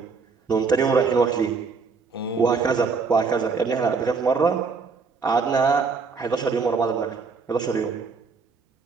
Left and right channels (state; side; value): quieter; left; 4.9 dB